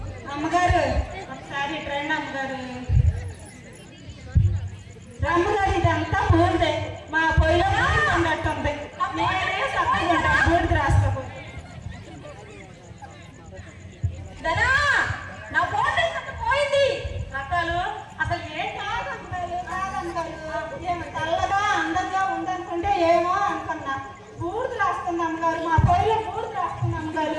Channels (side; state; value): both; identical; correlation 1.00